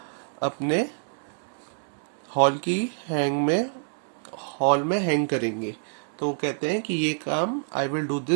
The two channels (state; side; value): silent; left; digital silence